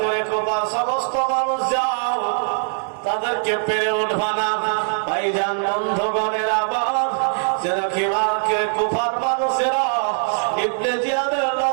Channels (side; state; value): left; silent; 65 dB below the other